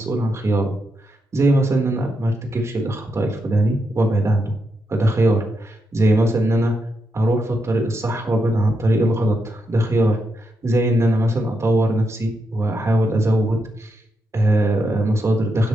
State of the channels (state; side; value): normal; both; correlation 0.83